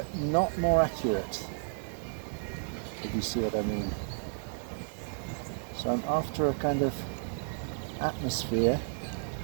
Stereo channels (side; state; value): left; silent; digital silence